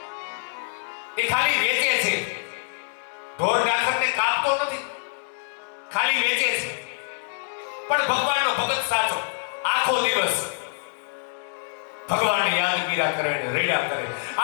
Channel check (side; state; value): right; silent; 61 dB below the other